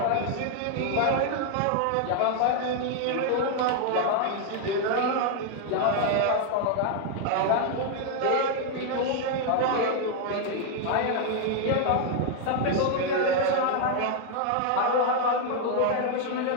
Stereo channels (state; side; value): different; both; correlation 0.00